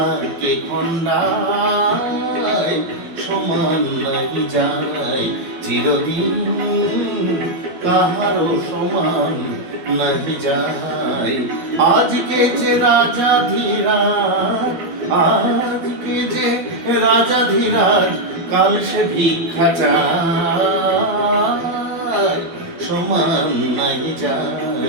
কে খণ্ডায়, সমান নাহি যায়। চিরদিন কাহারো সমান নাহি যায়। আজকে যে রাজা ধীরাজ, আজকে যে রাজা ধীরাজ, কাল সে ভিক্ষা চায়, সমান নাহি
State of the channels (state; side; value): late; left; 12 ms